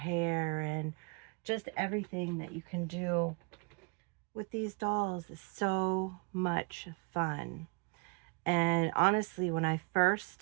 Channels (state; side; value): quieter; left; 33.1 dB